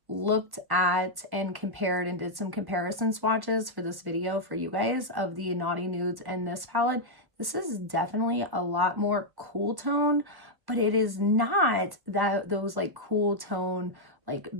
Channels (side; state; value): left; late; 1.1 ms